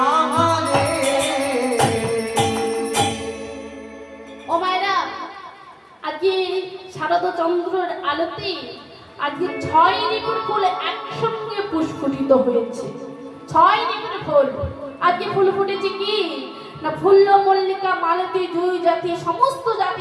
আহারে ও মায়েরা, আজকে শারদ চন্দ্রের আলোতে আজকে 6 ঋতুর ফুল একসঙ্গে পুষ্পিত হয়েছে। 6 ঋতুর ফুল আজকে ফুল ফুটেছে কি না, ফুল্ল মল্লিকা মালতী জুই জাতি সমস্ত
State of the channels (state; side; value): identical; both; correlation 1.00